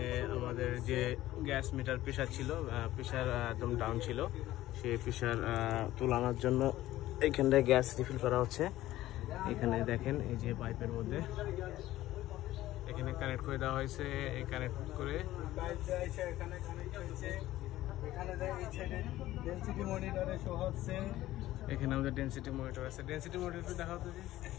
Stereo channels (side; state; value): right; quieter; 15.3 dB